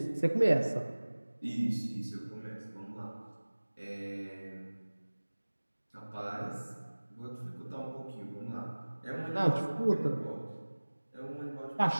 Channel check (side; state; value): both; inverted; correlation -1.00